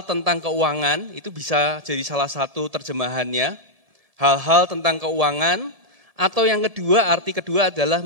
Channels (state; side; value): late; left; 1.7 ms